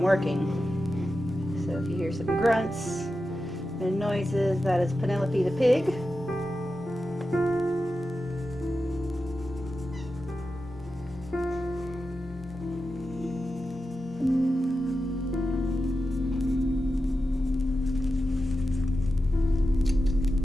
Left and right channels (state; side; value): normal; both; correlation 0.91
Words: working. So if you hear some grunts and noises, that is Penelope the pig.